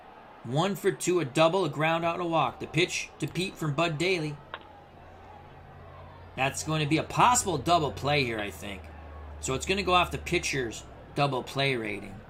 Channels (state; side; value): identical; both; correlation 1.00